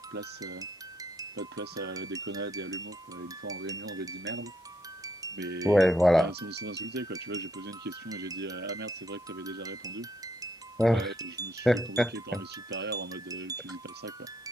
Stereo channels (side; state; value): both; normal; correlation 0.75